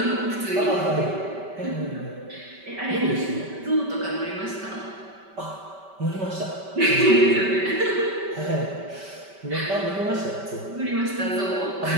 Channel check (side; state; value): left; late; 5.2 ms